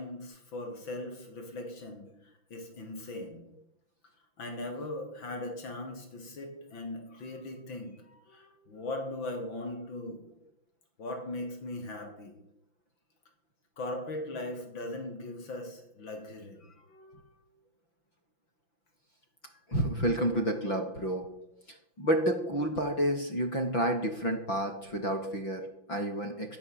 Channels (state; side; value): late; right; 5.9 ms